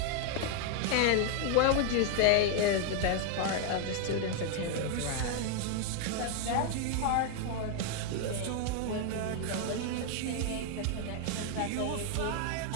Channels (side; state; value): both; different; correlation 0.00